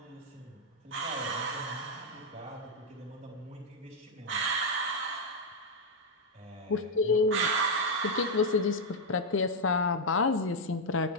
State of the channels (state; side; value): normal; both; correlation 0.01